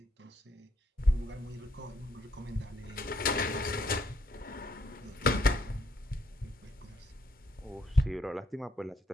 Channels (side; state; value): both; normal; correlation 0.72